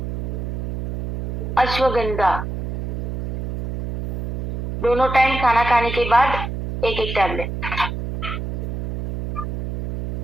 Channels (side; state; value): right; noise; hum, 4 dB below the sound